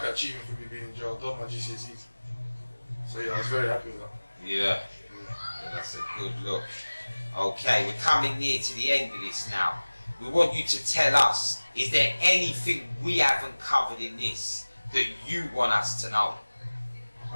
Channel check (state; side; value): inverted; both; correlation -1.00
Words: an achievement for me being in jail. I done my GCSEs. So yeah, I was very happy with that. Yeah, that's a good look. Okay, we're coming near to the end of this now. We want you to tell us, is there anything we haven't covered in this that you want us to know?